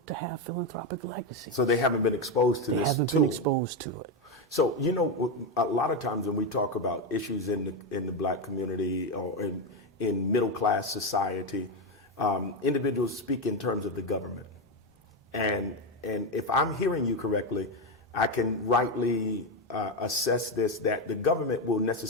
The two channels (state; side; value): normal; both; correlation 0.09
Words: to have philanthropic legacy. So they haven't been exposed to this They haven't tool. been exposed to it. So, you know, a lot of times when we talk about issues in the black community or in middle-class society, individuals speak in terms of the government. And if I'm hearing you correctly, I can rightly assess this, that the government will